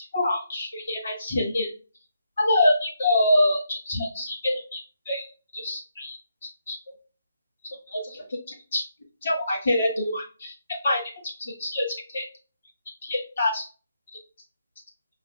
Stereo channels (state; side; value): inverted; both; correlation -0.80